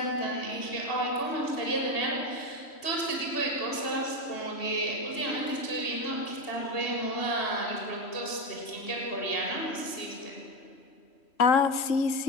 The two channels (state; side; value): late; right; 3.1 ms